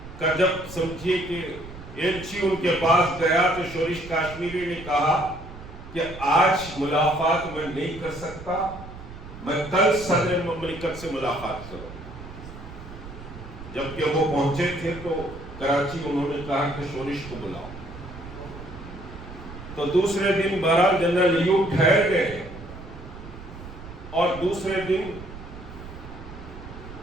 کا جب سمجھیے کہ ایلچی ان کے پاس گیا تو شورش کاشمیری نے کہا کہ آج ملاقات میں نہیں کر سکتا، میں کل صدر مملکت سے ملاقات کروں۔ جبکہ وہ پہنچے تھے تو کراچی، انہوں نے کہا کہ شورش کو بلاؤ۔ تو دوسرے دن بہرحال جنرل ایوب ٹھہر گئے، اور دوسرے دن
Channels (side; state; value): right; noise; rumble, 14 dB below the sound